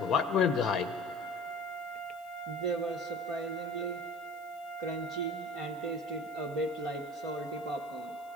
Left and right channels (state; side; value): noise; right; hiss, 25 dB below the sound